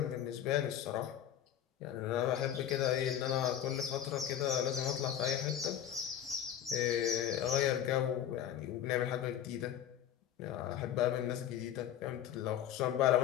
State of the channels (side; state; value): right; quieter; 10.4 dB